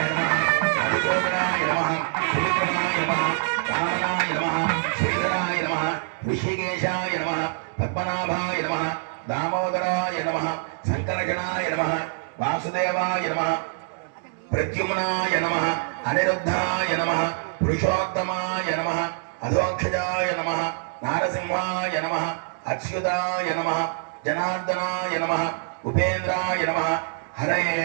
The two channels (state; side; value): silent; left; digital silence